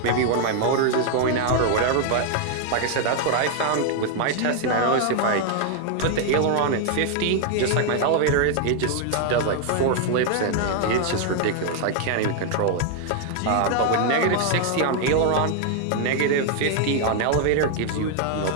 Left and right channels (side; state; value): both; different; correlation 0.00